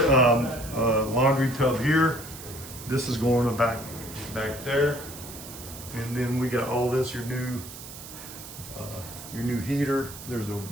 a laundry tub here. This is going back there. And then we got all this, your new heater. There's a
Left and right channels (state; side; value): noise; right; hiss, 13 dB below the sound